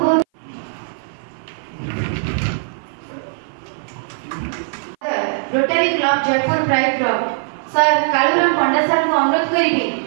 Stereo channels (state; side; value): silent; left; 56 dB below the other